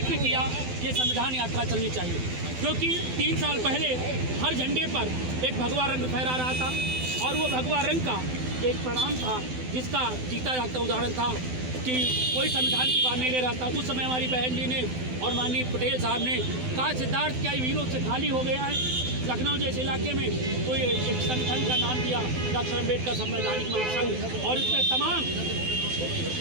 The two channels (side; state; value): left; late; 12 ms